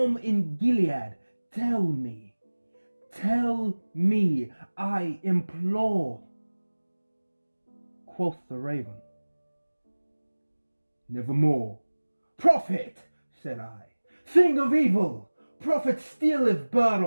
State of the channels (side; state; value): both; inverted; correlation -1.00